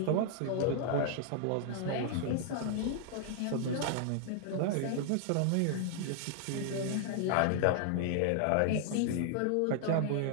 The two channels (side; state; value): both; different; correlation -0.01